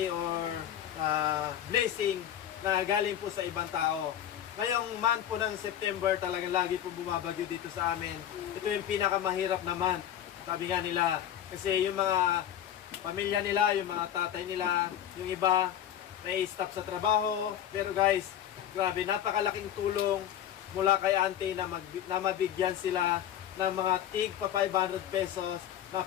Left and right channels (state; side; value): quieter; right; 10.7 dB